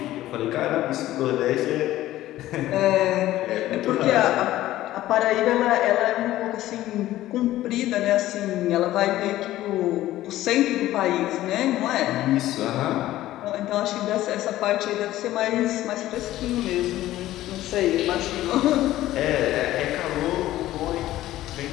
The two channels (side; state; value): right; quieter; 14.8 dB